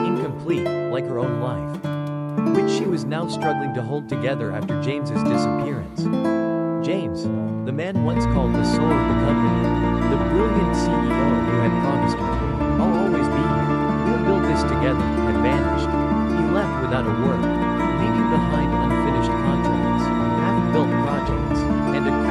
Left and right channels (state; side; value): identical; both; correlation 1.00